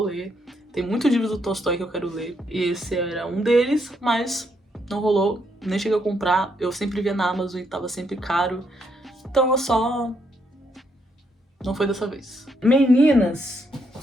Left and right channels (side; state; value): both; normal; correlation 0.75